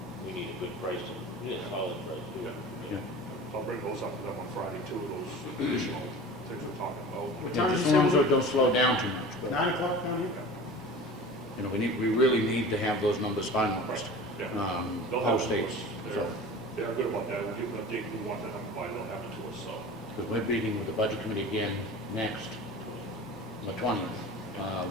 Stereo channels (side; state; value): both; normal; correlation 0.37